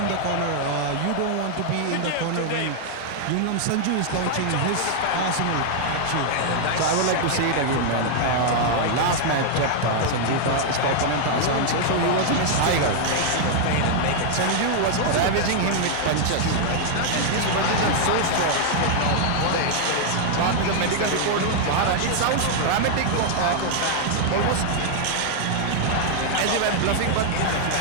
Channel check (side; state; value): both; different; correlation 0.00